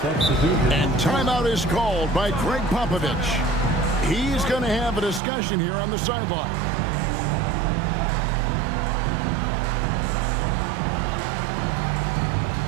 And timeout is called by Greg Popovich. He's going to have a discussion here on the sideline.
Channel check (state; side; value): drops out; left; at 5.2 s